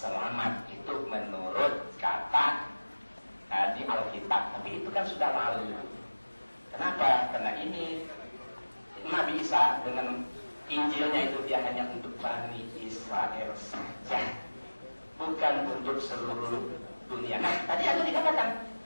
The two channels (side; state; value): both; inverted; correlation -1.00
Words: Itu menurut kata di Alkitab. Tapi itu kan sudah lalu. Kenapa? Karena ini Nabi Isa dengan Injilnya itu dia hanya untuk Bani Israel saja, bukan untuk seluruh dunia. Nah, tadi ada dikatakan